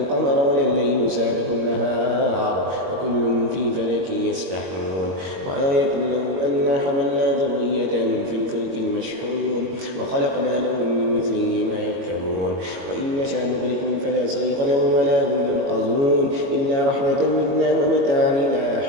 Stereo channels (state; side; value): late; left; 22 ms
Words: ولا الليل سابق النهار وكل في فلك يسبحون. وآية لهم أنا حملنا ذريتهم في الفلك المشحون وخلقنا لهم من مثله ما يركبون. وإن نشأ نغرقهم فلا صريخ لهم ولا هم ينقذون إلا رحمة منا ومتاعا إلى